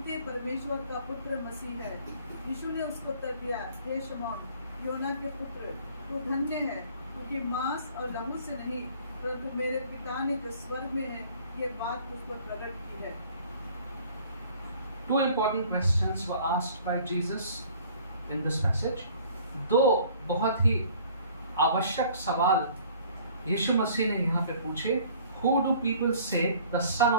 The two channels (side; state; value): both; inverted; correlation -0.53